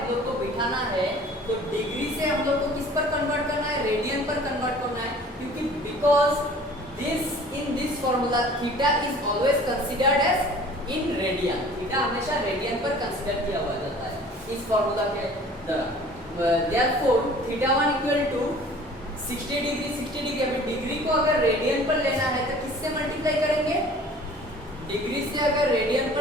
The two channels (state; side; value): normal; both; correlation 0.48